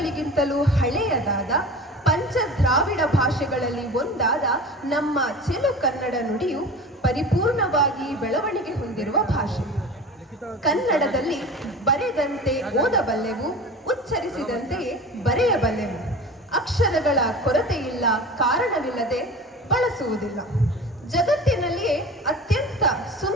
ಹಳೆಯದಾದ ಪಂಚ ದ್ರಾವಿಡ ಭಾಷೆಗಳಲ್ಲಿ ಒಂದಾದ ನಮ್ಮ ಚೆಲು ಕನ್ನಡ ನುಡಿಯು ಪರಿಪೂರ್ಣವಾಗಿ ಬೆಳವಣಿಗೆ ಹೊಂದಿರುವ ಭಾಷೆ. ಕನ್ನಡದಲ್ಲಿ ಬರೆದಂತೆ ಓದಬಲ್ಲೆವು, ಉಚ್ಚರಿಸಿದಂತೆಯೇ ಬರೆಯಬಲ್ಲೆವು. ಅಕ್ಷರಗಳ ಕೊರತೆಯಿಲ್ಲ, ಕಾರಣವಿಲ್ಲದೆ ಬಳಸುವುದಿಲ್ಲ. ಜಗತ್ತಿನಲ್ಲಿಯೇ ಅತ್ಯಂತ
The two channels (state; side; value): normal; both; correlation 0.35